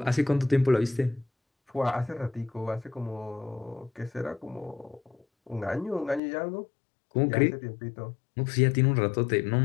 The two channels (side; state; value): right; drops out; at 6.2 s